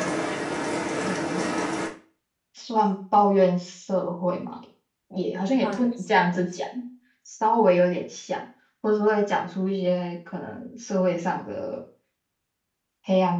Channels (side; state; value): both; identical; correlation 1.00